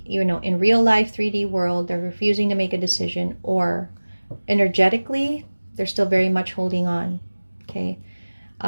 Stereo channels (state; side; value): inverted; both; correlation -1.00